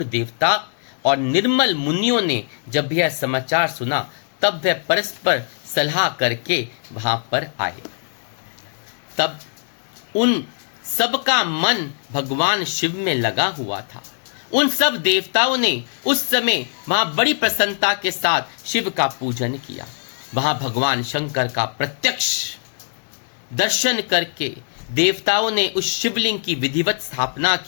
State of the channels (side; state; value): right; silent; 65 dB below the other